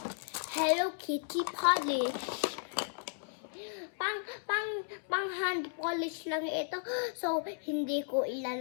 Hello Kitty polish. Pang hand polish lang ito. So, hindi ko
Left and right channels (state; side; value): silent; right; 55 dB below the other